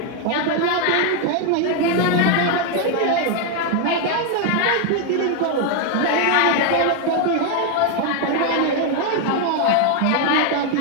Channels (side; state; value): both; different; correlation 0.01